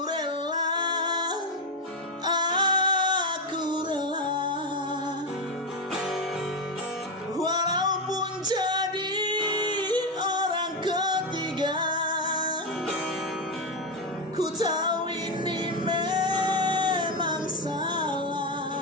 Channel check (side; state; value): both; normal; correlation 0.09